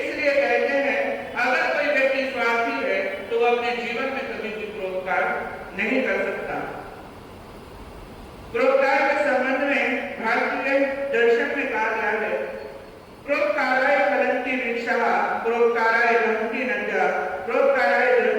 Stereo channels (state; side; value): identical; both; correlation 1.00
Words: कहते हैं अगर कोई व्यक्ति स्वार्थी है तो वो अपने जीवन में कभी भी परोपकार नहीं कर सकता। परोपकार के संबंध में भारतीय दर्शन में कहा गया है, परोपकाराय फलन्ति वृक्षाः, परोपकाराय वहन्ति नद्यः, परोपकाराय